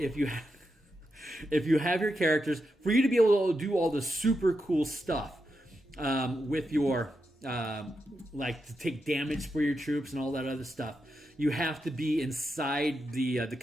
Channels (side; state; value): both; normal; correlation 0.86